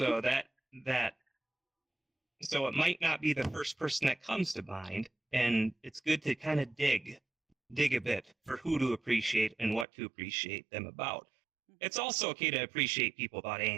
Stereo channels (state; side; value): drops out; left; at 9.9 s